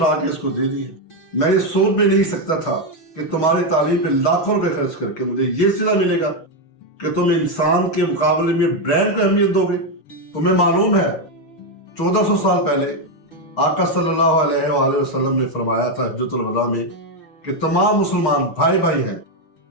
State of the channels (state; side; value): late; right; 6.4 ms